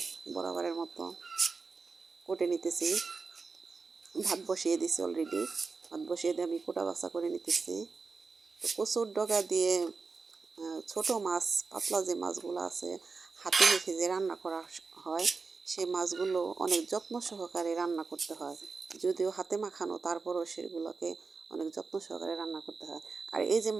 বরাবরের মতো, কোটে নিতেছি, ভাত বসিয়ে দিছি অলরেডি, ভাত বসিয়ে দিয়ে আমি কোটা বাছা করে নিতেছি। তো কচুর ডগা দিয়ে ছোটো মাছ, পাতলা যে মাছগুলো আছে, হাতে মেখে যে রান্না করা হয়, সেই মাছগুলো অনেক যত্ন সহকারে রান্না করতে হয়। যদিও হাতে মাখানো, তারপরও সেগুলোকে অনেক যত্ন সহকারে রান্না করতে হয়। আর এই যে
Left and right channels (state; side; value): quieter; left; 4.5 dB